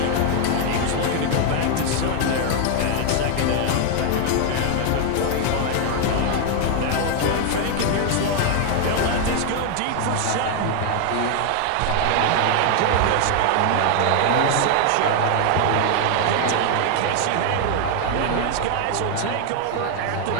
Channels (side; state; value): both; different; correlation 0.00